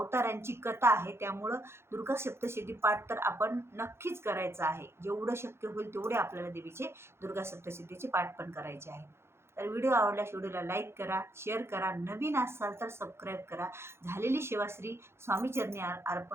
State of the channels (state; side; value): late; left; 0.12 ms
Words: कथा आहे. त्यामुळं दुर्गा सप्तशती पाठ तर आपण नक्कीच करायचं आहे. जेवढं शक्य होईल तेवढे आपल्याला देवीचे दुर्गा सप्तशतीचे पाठ पण करायचे आहे. तर व्हिडिओ आवडल्यास व्हिडिओला लाईक करा, शेअर करा, नवीन असाल तर सबस्क्राईब करा. झालेली सेवा श्री स्वामीचरणी